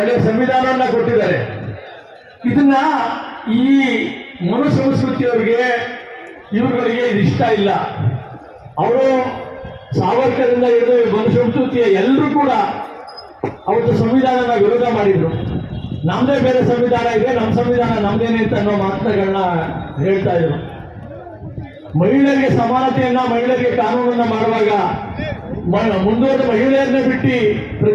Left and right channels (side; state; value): both; identical; correlation 1.00